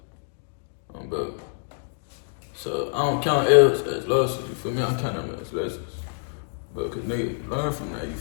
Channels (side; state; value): right; silent; 61 dB below the other